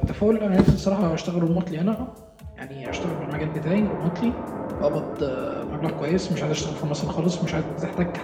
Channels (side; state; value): both; identical; correlation 1.00